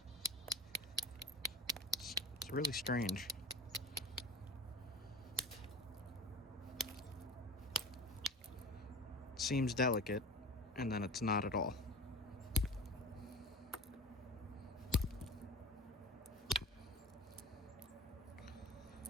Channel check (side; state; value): both; normal; correlation 0.35